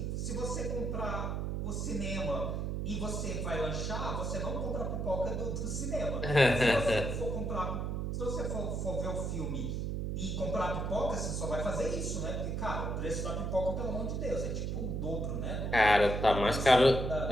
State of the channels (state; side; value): noise; right; hum, 1 dB below the sound